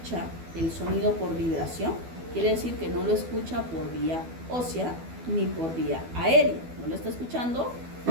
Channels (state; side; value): late; left; 12 ms